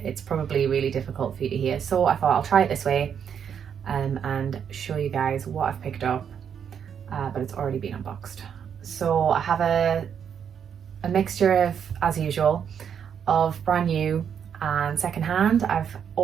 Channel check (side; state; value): left; quieter; 7.9 dB